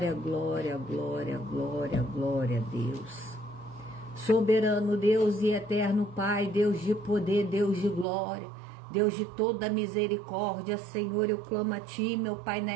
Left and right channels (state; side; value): drops out; left; at 8.1 s